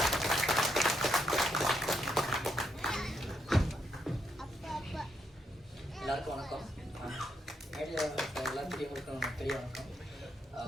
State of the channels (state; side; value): normal; both; correlation 0.78